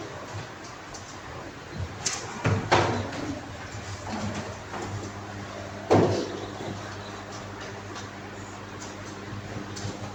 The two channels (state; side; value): identical; both; correlation 1.00